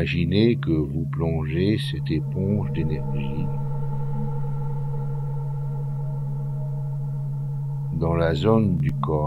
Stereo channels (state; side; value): identical; both; correlation 1.00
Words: que vous plongez cette éponge d'énergie dans la zone du